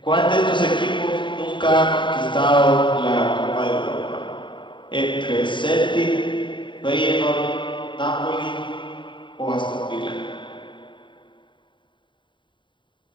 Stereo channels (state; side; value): late; right; 0.23 ms